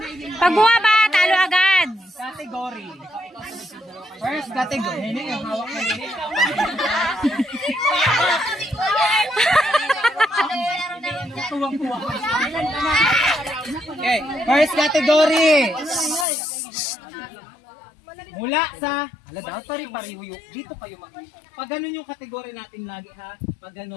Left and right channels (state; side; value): drops out; right; at 16.2 s